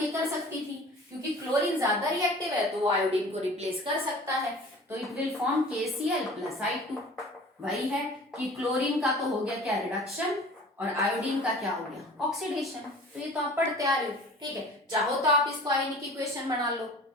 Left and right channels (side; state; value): both; normal; correlation 0.44